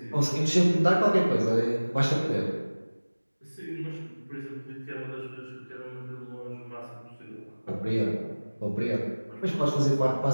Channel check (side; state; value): both; inverted; correlation -1.00